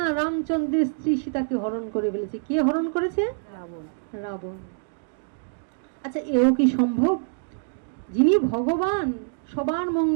রামচন্দ্রের স্ত্রী সীতাকে হরণ করে ফেলেছে। কে হরণ করেছে? রাবণ। রাবণ। আচ্ছা, এও কি সম্ভব? যিনি ভগবান সবার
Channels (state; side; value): silent; left; digital silence